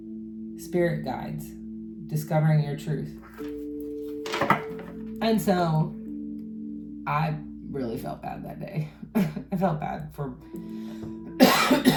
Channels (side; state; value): both; identical; correlation 1.00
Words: Spirit guides, discovering your truth. And so, I really felt bad that day. I felt bad for